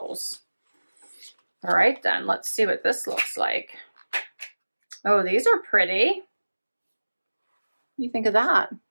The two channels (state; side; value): inverted; both; correlation -1.00